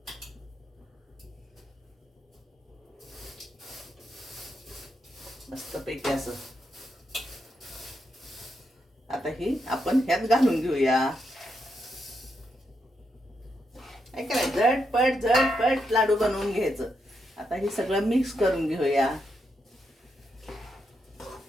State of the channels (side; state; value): both; normal; correlation 0.82